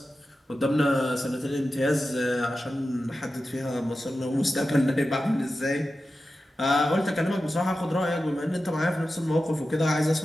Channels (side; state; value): both; normal; correlation 0.93